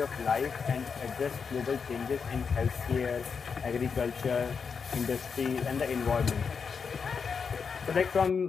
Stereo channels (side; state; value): right; quieter; 5.9 dB